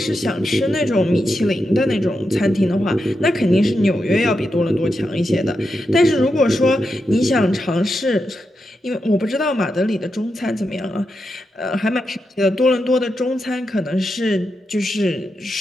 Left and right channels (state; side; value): normal; both; correlation 0.87